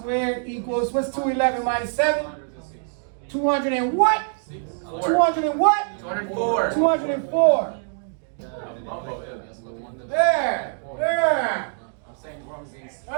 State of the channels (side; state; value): left; silent; digital silence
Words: equals, what's 211 minus 7? 200 and what? 200 and what? 204. 204. There. I'm saying wrong things.